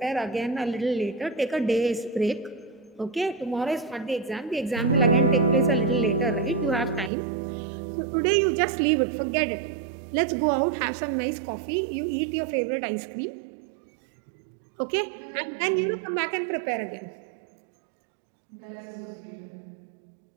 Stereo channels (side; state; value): left; drops out; at 7.1 s